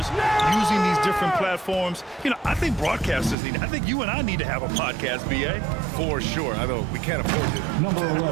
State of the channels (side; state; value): left; drops out; at 3.4 s